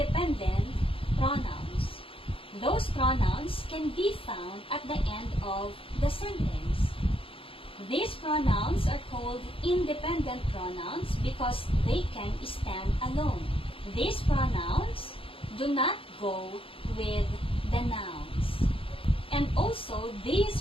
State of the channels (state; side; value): late; right; 0.26 ms